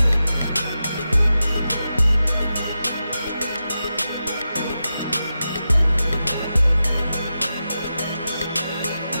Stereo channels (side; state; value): both; inverted; correlation -0.90